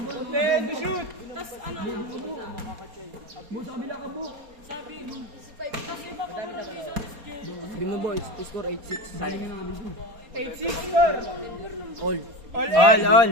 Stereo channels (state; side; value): late; left; 4.3 ms